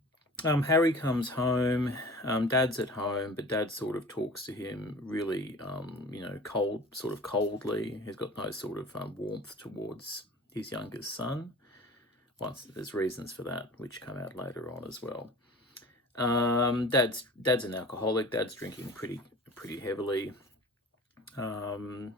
Harry comes home. Dad's at home, but Dad sort of talks to him really, coldly. He's got no sort of warmth towards his youngest son. There's reasons for that, which come out later on as well. Dad's an alcoholic. Dad's drinking pretty heavily.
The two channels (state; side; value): normal; both; correlation 0.41